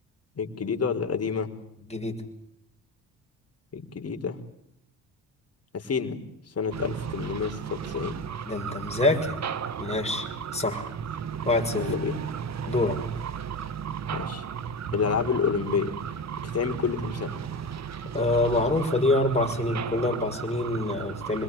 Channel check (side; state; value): both; normal; correlation 0.24